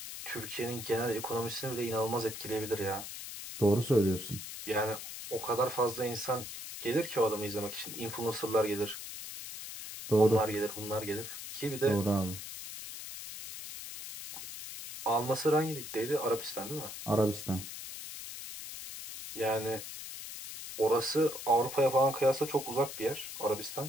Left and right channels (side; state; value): left; noise; hiss, 9 dB below the sound